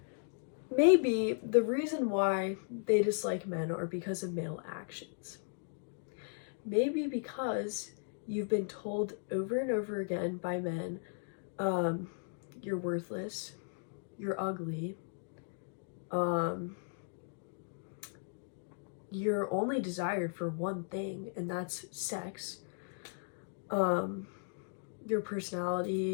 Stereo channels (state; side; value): silent; right; digital silence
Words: maybe the reason why they dislike men are because of male actions. maybe because you've been told over and over again by men, you're worthless, you're ugly, um, you're only desired for one thing, and that's sex. Um, your